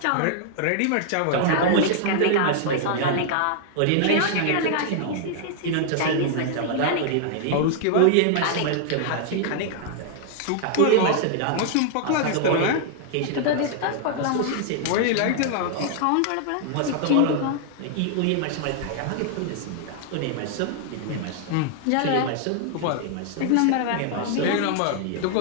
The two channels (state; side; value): different; both; correlation 0.00